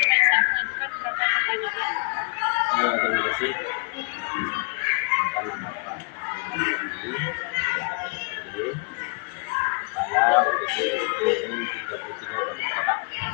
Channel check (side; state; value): right; quieter; 36.6 dB